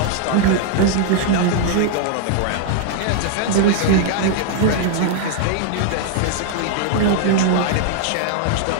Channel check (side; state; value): both; different; correlation 0.00